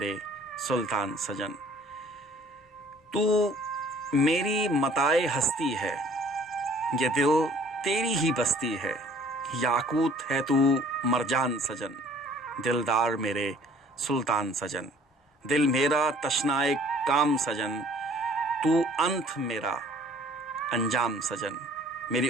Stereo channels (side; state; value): both; normal; correlation 0.55